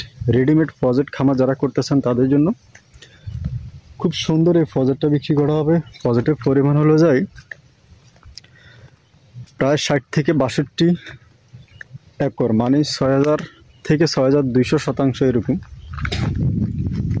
রেডিমেড প্রজেক্ট খামার যারা করতে চান, তাদের জন্য খুব সুন্দর এই প্রজেক্টটা বিক্রি করা হবে। প্রজেক্টের পরিমাণ হলো যায় প্রায় 60 থেকে 62 একর, মানে 6000 থেকে 6200 শতাংশ এরকম।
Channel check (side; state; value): both; identical; correlation 1.00